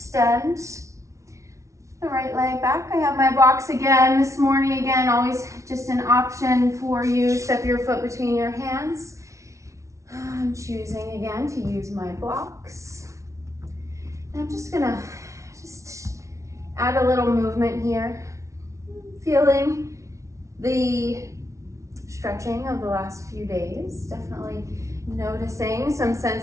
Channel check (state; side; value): late; left; 0.14 ms